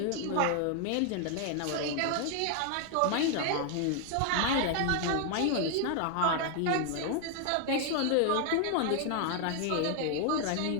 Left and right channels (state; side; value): different; both; correlation 0.00